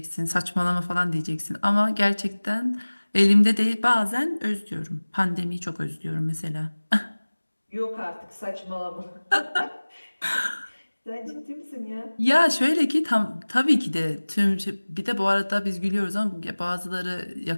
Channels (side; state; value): both; inverted; correlation -1.00